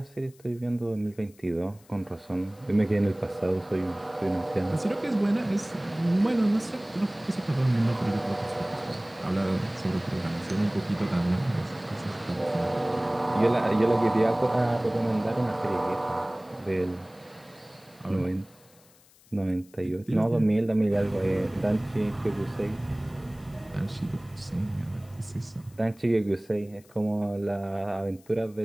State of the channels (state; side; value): noise; left; hiss, 28 dB below the sound